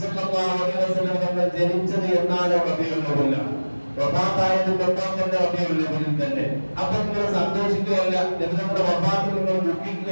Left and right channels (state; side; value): inverted; both; correlation -1.00